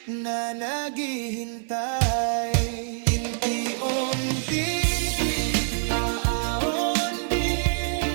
na naghihintay. Unti-unti aaon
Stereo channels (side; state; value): left; silent; digital silence